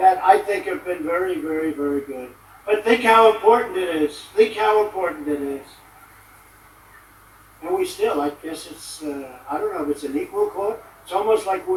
I think have been very, very, very good. But think how important it is. Think how important it is. And we still, I guess it's, I don't know if it's an equal court. It's almost like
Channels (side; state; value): both; identical; correlation 1.00